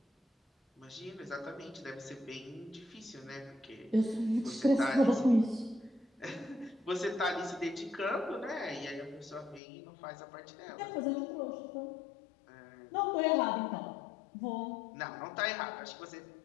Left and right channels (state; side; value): drops out; right; at 9.6 s